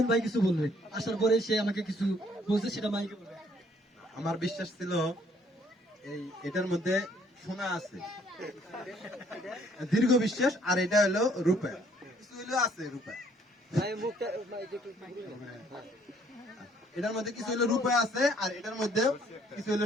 ভাই কিছু বলবে, আসার পরে সে আমাকে কিছু বলছে, সেটা মাইকে বলবে। আমার বিশ্বাস ছিল এটার মধ্যে সোনা আছে, দীর্ঘ বিশ্বাস। আর এটা হলো রূপা, কিছু হলো আছে রূপা, এটার মধ্যে কিছু হলো রূপা আছে, আর এটার মধ্যে কিছু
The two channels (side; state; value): both; normal; correlation 0.63